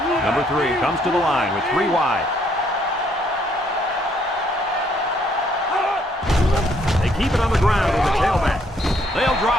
Number 3 comes to the line with 3 wide. They keep it on the ground with the tailback. They'll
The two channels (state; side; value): normal; both; correlation 0.68